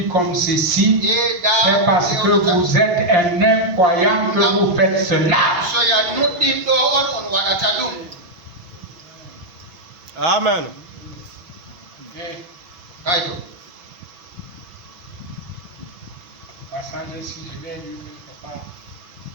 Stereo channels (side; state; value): left; late; 5.6 ms